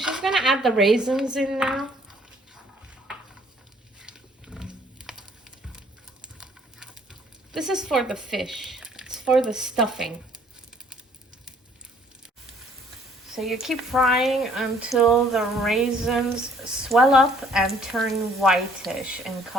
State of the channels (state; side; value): normal; both; correlation 0.60